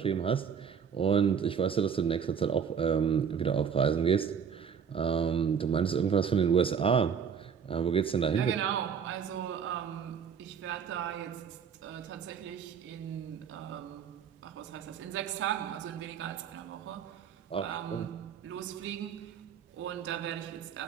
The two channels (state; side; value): quieter; left; 7.1 dB